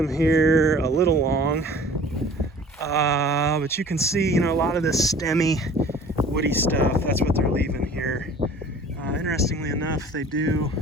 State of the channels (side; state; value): both; normal; correlation 0.47